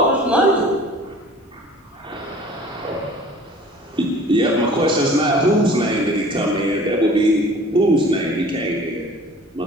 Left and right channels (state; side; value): normal; both; correlation 0.48